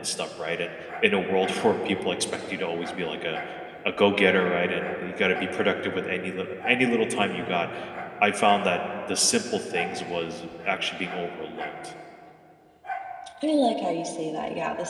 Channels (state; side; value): identical; both; correlation 1.00